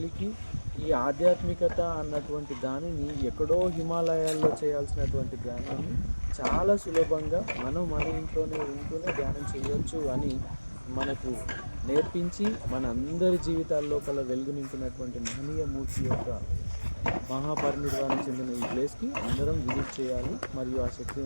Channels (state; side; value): inverted; both; correlation -1.00